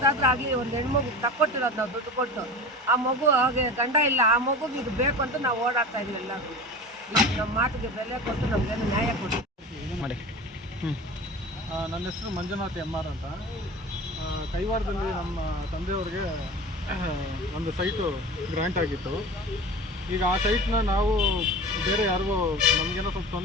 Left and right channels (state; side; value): normal; both; correlation 0.34